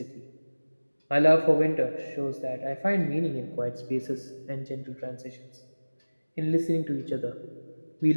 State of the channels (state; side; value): inverted; both; correlation -1.00